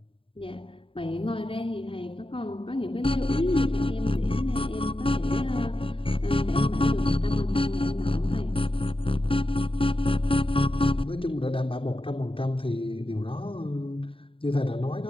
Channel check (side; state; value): right; late; 0.26 ms